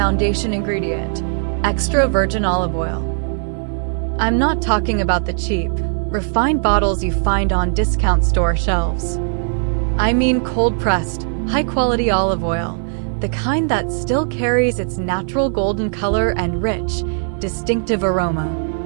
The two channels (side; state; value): left; silent; 66 dB below the other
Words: ingredient, extra virgin olive oil. I'm not talking about the cheap, refined bottles you find on discount store shelves. I mean cold-pressed, high-quality olive oil, the kind that still carries its natural golden color and rich, distinctive aroma.